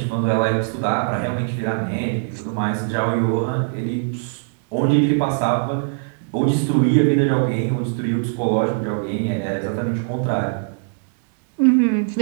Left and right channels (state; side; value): silent; left; digital silence